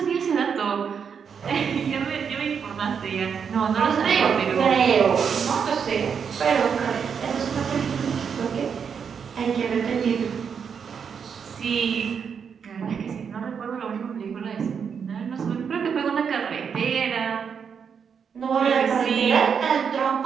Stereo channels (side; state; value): left; quieter; 6.8 dB